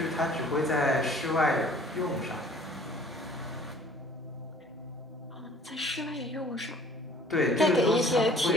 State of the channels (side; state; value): both; normal; correlation 0.52